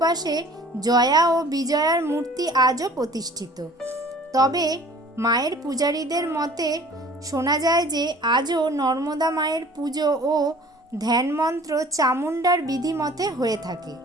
জয়া ও বিজয়ার মূর্তি আজও প্রতিষ্ঠিত। তবে মায়ের পূজারীদের মতে শোনা যায় যে আজও নর্মদা মায়ের পুজো ও ধ্যানমন্ত্র চামুণ্ডার বিধিমতে হয়ে থাকে।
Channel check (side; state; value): both; normal; correlation 0.49